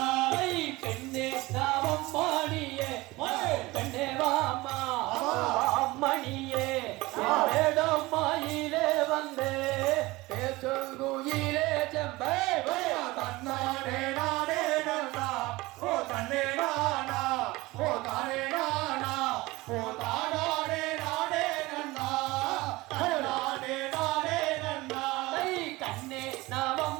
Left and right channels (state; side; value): quieter; left; 20.8 dB